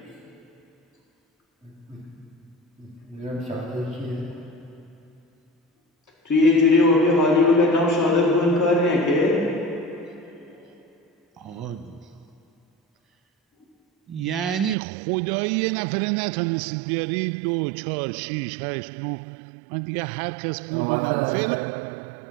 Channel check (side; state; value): left; drops out; at 14.8 s